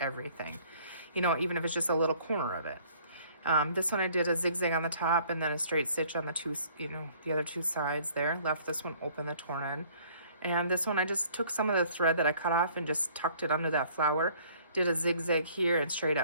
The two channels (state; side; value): inverted; both; correlation -0.57